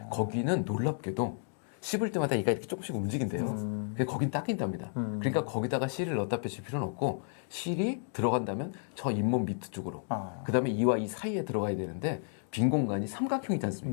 거기는 놀랍게도 씹을 때마다 이가 이렇게 조금씩 움직인대요. 근데 거긴 닦인답니다. 그러니까 거기다가 실을 넣다 빼실 필요는 없고 실이 들어간다면 저 잇몸 밑 쪽으로 그 다음에 이와 이 사이에 들어가야 되는데 빈 공간이 삼각형이지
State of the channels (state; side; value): silent; right; 56 dB below the other